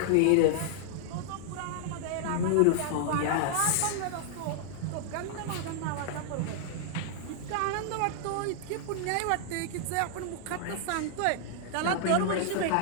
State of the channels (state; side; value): different; both; correlation -0.01